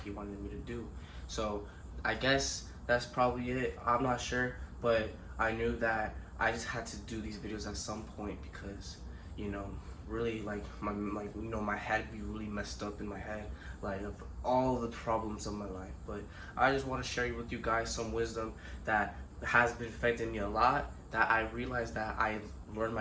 He wanted me to do. So I guess that's probably it. I'm not sure, but I knew that I just had to do these videos at some point because, you know, really my head be really messed up in my head, like of all the problems of my life. But I just want to share with you guys some wisdom that has been affecting me a lot. That I realized that I learned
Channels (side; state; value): both; identical; correlation 1.00